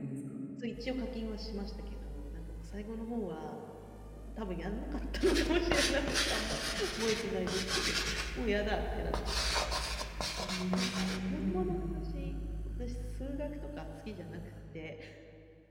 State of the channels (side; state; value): both; identical; correlation 1.00